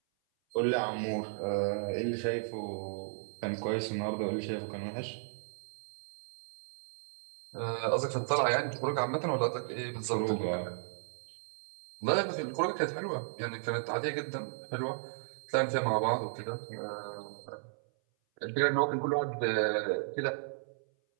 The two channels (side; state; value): left; silent; 55 dB below the other